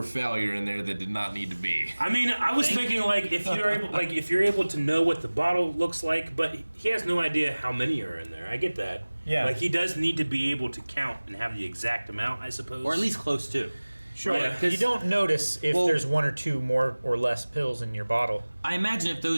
failure in there that did not need to be. I mean, I was thinking like if you're able to know what the bottle looks like, but he has no idea how many are in there. I get that. Yeah. Like he does need to be able to count and have the exact amount, I suppose. Or at least close to. Sure. Yeah. You don't notice if Well- there's 1 or 2 more or less pills in your bottle. I imagine if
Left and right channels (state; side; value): inverted; both; correlation -1.00